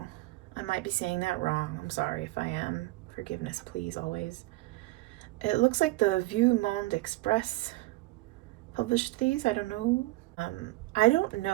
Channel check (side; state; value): left; quieter; 20.1 dB